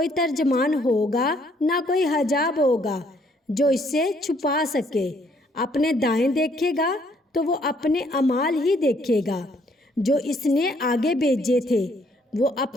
ترجمان ہوگا نہ کوئی حجاب ہوگا جو اس سے چھپا سکے۔ اپنے دائیں دیکھے گا تو وہ اپنے اعمال ہی دیکھے گا جو اس نے آگے بھیجے تھے، وہ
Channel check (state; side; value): normal; both; correlation 0.66